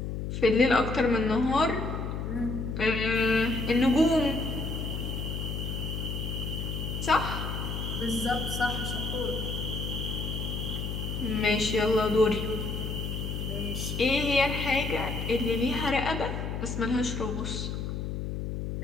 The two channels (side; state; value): left; noise; hum, 4 dB below the sound